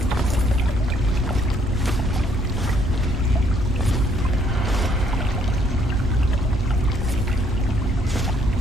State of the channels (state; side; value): normal; both; correlation 0.67